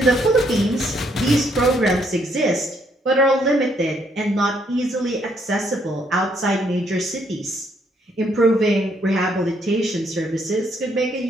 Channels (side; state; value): both; normal; correlation 0.71